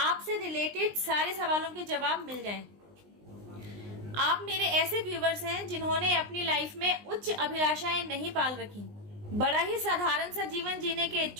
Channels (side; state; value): left; late; 19 ms